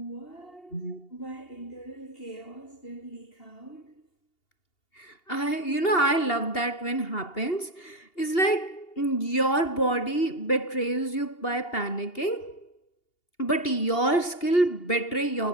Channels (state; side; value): late; right; 2.8 ms